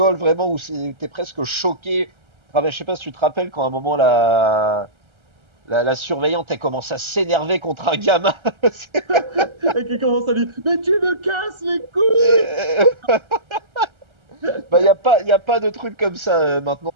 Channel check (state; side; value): late; left; 1.3 ms